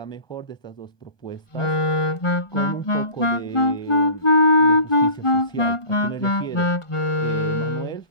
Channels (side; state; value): right; late; 1.2 ms